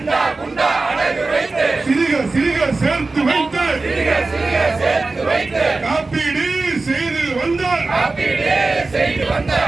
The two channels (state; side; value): quieter; left; 3.6 dB